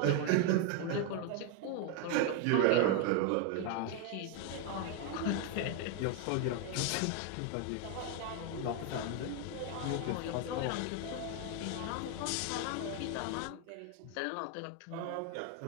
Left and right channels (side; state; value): both; different; correlation 0.01